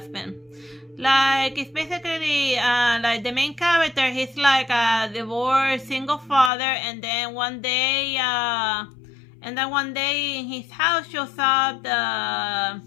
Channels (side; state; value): right; drops out; at 6.5 s